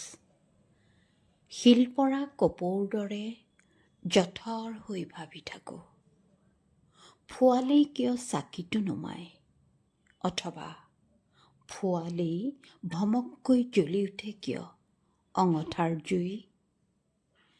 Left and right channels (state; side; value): identical; both; correlation 1.00